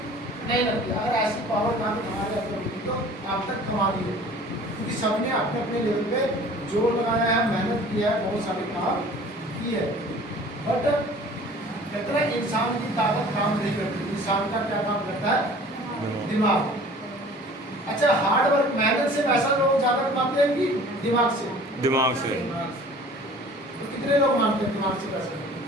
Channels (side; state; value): both; normal; correlation 0.47